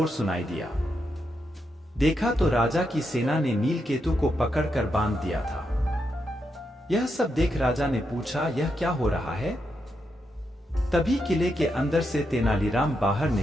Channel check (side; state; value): both; normal; correlation 0.83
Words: सुनाई दिया। देखा तो राजा की सेना ने नीलकेतु को पकड़कर बांध दिया था। यह सब देख राजा ने पूछा, यह क्या हो रहा है? तभी किले के अंदर से तेनालीराम बाहर